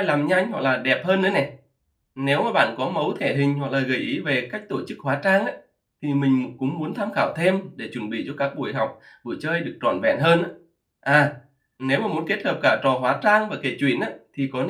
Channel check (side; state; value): both; identical; correlation 1.00